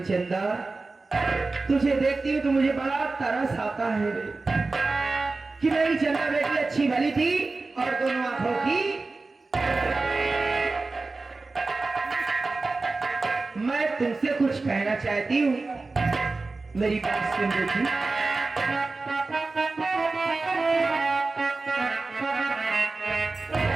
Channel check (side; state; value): left; quieter; 3.6 dB